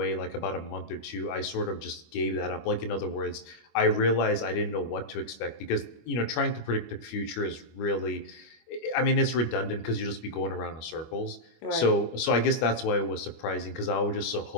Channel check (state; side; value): late; right; 25 ms